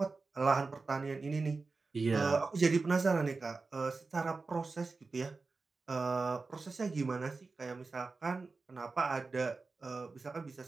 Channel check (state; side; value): quieter; left; 4.0 dB